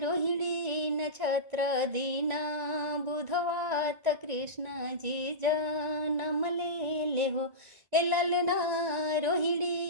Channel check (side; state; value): left; late; 1.9 ms